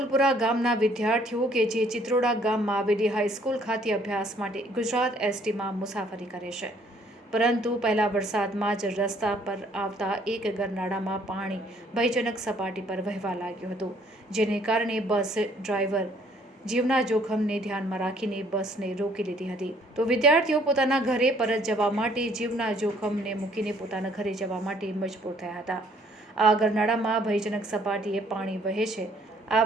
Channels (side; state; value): both; normal; correlation 0.62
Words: ગામના વિદ્યાર્થીઓ કે જે ચિત્રોડા ગામમાં આવેલી હાઈસ્કૂલ ખાતે અભ્યાસ માટે ગુજરાત એસટીમાં મુસાફરી કરે છે, પરંતુ પહેલા વરસાદમાં જ રસ્તા પર આવતા એક ગરનાળામાં પાણી ભયજનક સપાટી પર વહેવા લાગ્યું હતું, જેને કારણે બસ ડ્રાઈવર જીવના જોખમને ધ્યાનમાં રાખીને બસને રોકી લીધી હતી. તો વિદ્યાર્થીઓ પોતાના ઘરે પરત જવા માટે જીવના જોખમને મૂકીને પોતાના ઘરે જવા માટે મજબૂર થયા હતા. આ ગરનાળામાં ભયજનક સપાટીએ પાણી વહે છે. આ